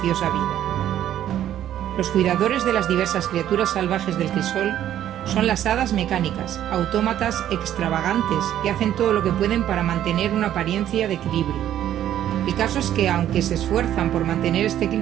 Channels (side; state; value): left; quieter; 11.4 dB